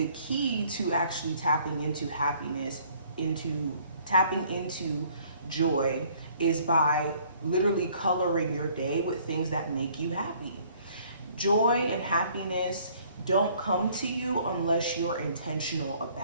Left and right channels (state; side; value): inverted; both; correlation -0.59